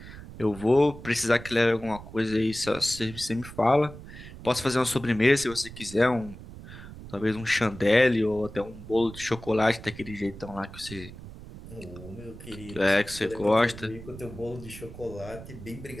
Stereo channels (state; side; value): noise; right; rumble, 14 dB below the sound